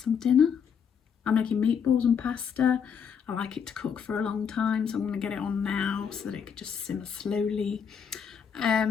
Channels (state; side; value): quieter; right; 7.1 dB